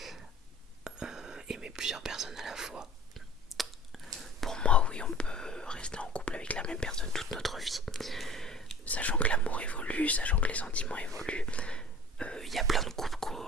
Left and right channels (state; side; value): normal; both; correlation 0.41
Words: Aimer plusieurs personnes à la fois. Pour moi, oui, on peut rester en couple avec la même personne toute notre vie, sachant que l'amour évolue, sachant que les sentiments évoluent. Il y a plein de couples,